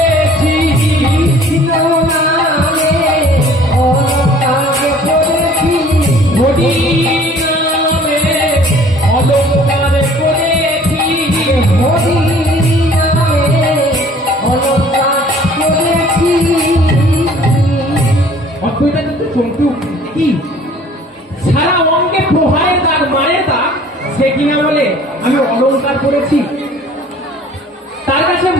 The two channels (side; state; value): both; normal; correlation 0.52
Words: কৃষ্ণ নামে, অলংকার পড়েছি হরি নামে, অলংকার পড়েছি হরি নামে, অলংকার পড়েছি। অদ্বৈতা কিন্তু চমকে উঠছে, কি সারা অঙ্গে প্রহারের দাগ, মারের দাগ, সে কিনা বলে আমি অলংকার করেছি। তার কাছে